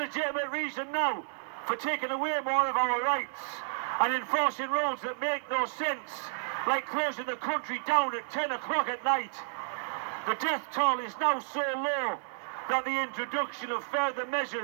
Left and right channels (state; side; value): silent; left; digital silence